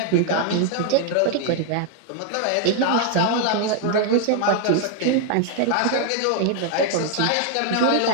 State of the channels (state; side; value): different; both; correlation 0.00